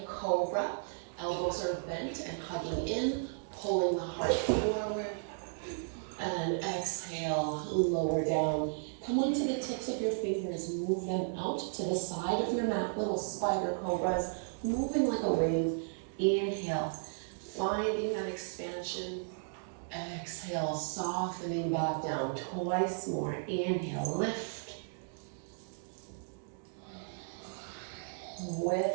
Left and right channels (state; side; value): silent; left; digital silence